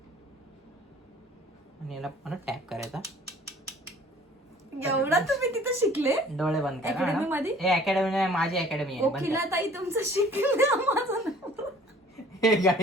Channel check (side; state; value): both; normal; correlation 0.53